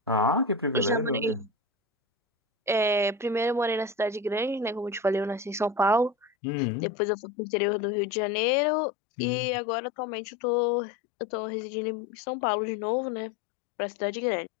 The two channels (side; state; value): right; drops out; at 6.3 s